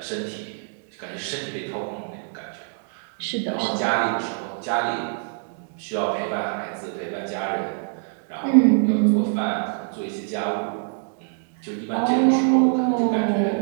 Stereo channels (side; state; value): left; silent; digital silence